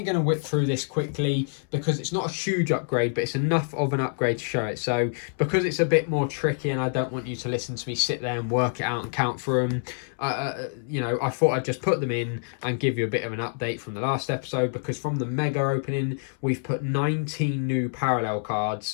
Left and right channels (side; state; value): right; silent; 61 dB below the other